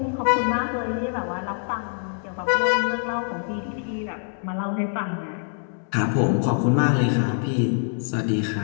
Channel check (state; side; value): silent; right; 62 dB below the other